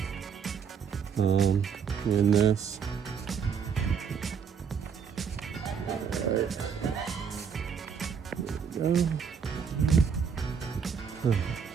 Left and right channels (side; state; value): left; quieter; 6.7 dB